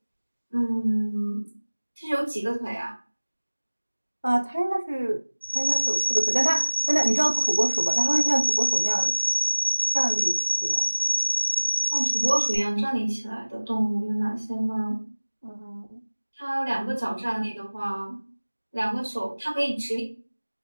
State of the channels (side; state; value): both; inverted; correlation -1.00